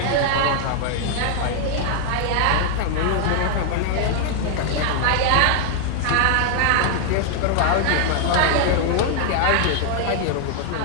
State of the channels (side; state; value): both; different; correlation 0.00